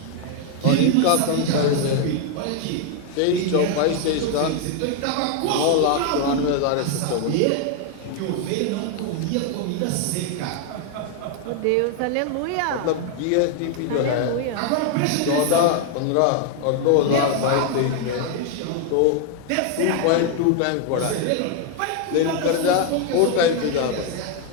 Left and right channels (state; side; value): different; both; correlation 0.01